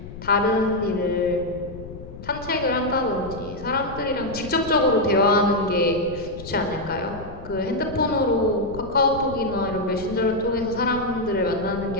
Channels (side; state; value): left; noise; rumble, 13 dB below the sound